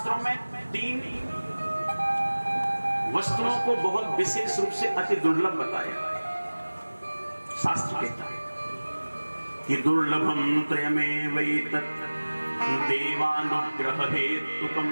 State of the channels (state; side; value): inverted; both; correlation -1.00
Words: में 3 वस्तुओं को बहुत विशेष रूप से अति दुर्लभ बताया। शास्त्र कहता है कि दुर्लभम त्रयमेवैतत् देवानुग्रह